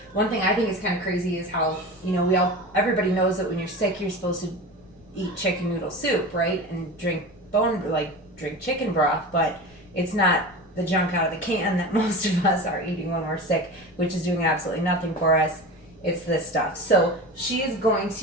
one thing I think is kind of crazy is how, everybody knows that when you're sick, you're supposed to eat chicken noodle soup, right? And drink chicken broth, but it's not the junk out of the can that most of us are eating when we're sick, which is doing absolutely nothing for us. It's this stuff. So she is going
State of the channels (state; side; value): noise; left; rumble, 27 dB below the sound